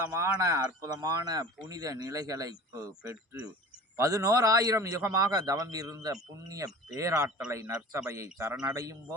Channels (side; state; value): both; normal; correlation 0.40